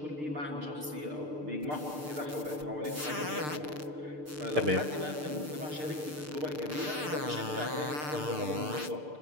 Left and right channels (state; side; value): late; left; 6.7 ms